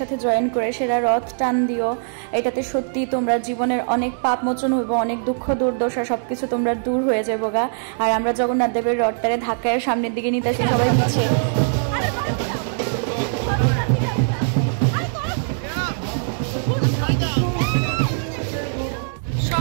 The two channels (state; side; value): silent; left; digital silence